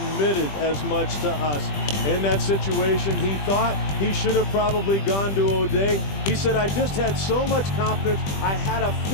as much to us. In that situation, he thought he should have probably gone to O'Day. He said, I just had so much confidence. I had a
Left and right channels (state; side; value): late; right; 20 ms